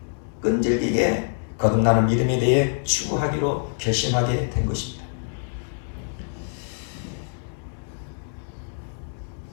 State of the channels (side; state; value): right; silent; digital silence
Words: 끈질기게 거듭나는 믿음에 대해 추구하기로 결심하게 된 것입니다.